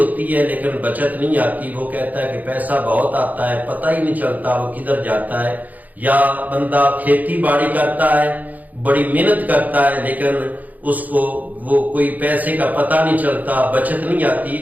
ہے لیکن بچت نہیں آتی، وہ کہتا ہے کہ پیسہ بہت آتا ہے پتہ ہی نہیں چلتا وہ کدھر جاتا ہے، یا بندہ کھیتی باڑی کرتا ہے، بڑی محنت کرتا ہے لیکن اس کو وہ کوئی پیسے کا پتہ نہیں چلتا، بچت نہیں آتی،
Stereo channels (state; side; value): late; left; 0.080 ms